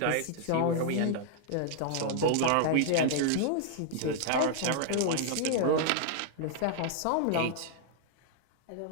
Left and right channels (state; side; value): different; both; correlation -0.01